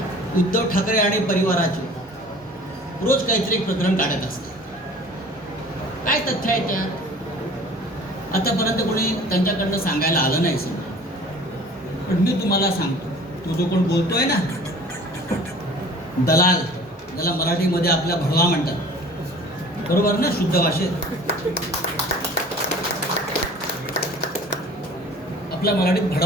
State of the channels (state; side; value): normal; both; correlation 0.46